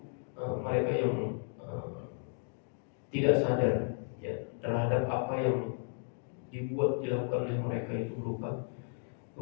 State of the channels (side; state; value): right; silent; 55 dB below the other